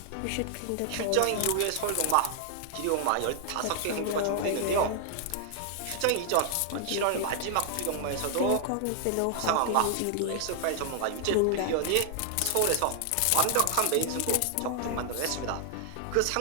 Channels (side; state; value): both; different; correlation 0.00